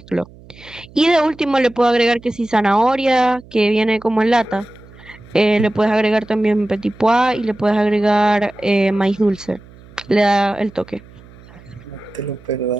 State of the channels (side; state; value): right; noise; hum, 22 dB below the sound